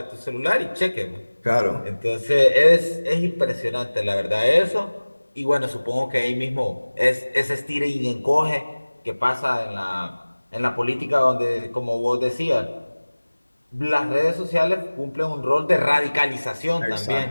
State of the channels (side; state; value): both; inverted; correlation -1.00